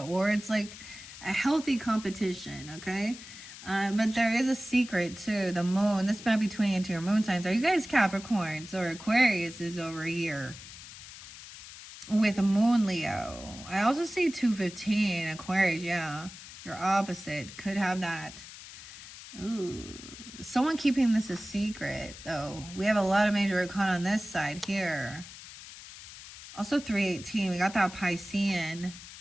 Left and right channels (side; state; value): left; noise; hiss, 15 dB below the sound